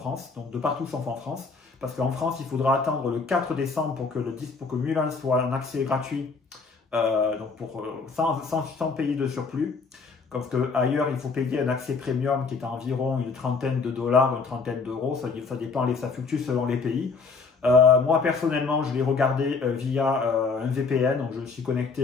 donc de partout sauf en France, parce qu'en France, il faudra attendre le 4 décembre pour que Mulan soit un accès gratuit, donc sans payer de surplus. Parce qu'ailleurs, il faut payer un accès premium qui est à environ une trentaine de dollars, une trentaine d'euros, ça dépend, ça fluctue selon les pays. Moi, personnellement, je l'ai regardé via un VPN, donc je me suis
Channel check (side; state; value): right; quieter; 4.6 dB